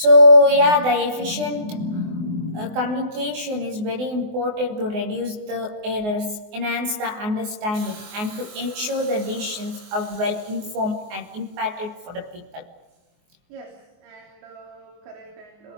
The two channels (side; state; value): left; late; 24 ms